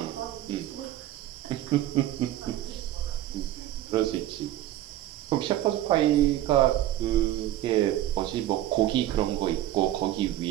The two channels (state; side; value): quieter; left; 13.7 dB